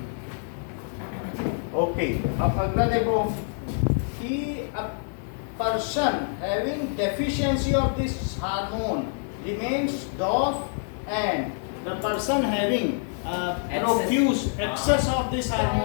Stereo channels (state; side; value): silent; right; 61 dB below the other